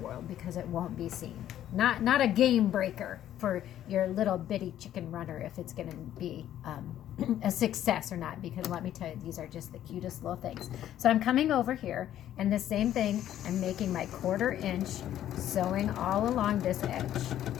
because it won't be seen. Not a game breaker for your little bitty chicken runner if it's going to be a success or not, because let me tell you, these are just the cutest little things. So I'm coming over here and the same thing, I'm making my 1/4 inch, sewing all along this edge.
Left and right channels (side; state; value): right; quieter; 11.8 dB